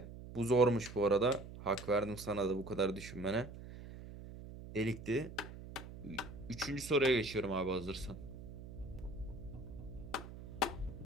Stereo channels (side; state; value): right; noise; hum, 13 dB below the sound